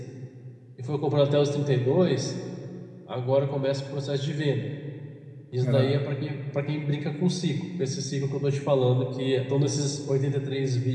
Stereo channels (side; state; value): both; identical; correlation 1.00